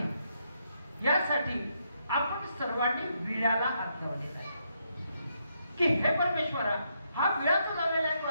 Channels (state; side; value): inverted; both; correlation -0.78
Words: यासाठी आपण सर्वांनी विळ्याला हात लावलेला आहे. की हे परमेश्वरा, हा विळा जो लावलेला आहे तो